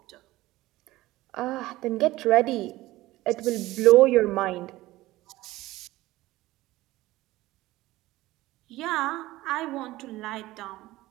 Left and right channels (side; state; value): left; quieter; 17.6 dB